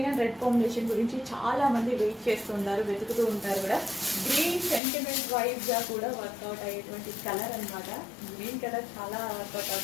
అండ్ రెడ్ కాంబినేషన్ గురించి చాలా మంది వెయిట్ చేస్తుంటారు, వెతుకుతూ ఉంటారు కూడా. గ్రీన్ సెంటిమెంట్ వైజ్ గా కూడా వర్కౌట్ అయ్యేటువంటి కలర్ అనమాట. గ్రీన్ కలర్ చాలా వర్కౌట్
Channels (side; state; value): right; drops out; at 4.8 s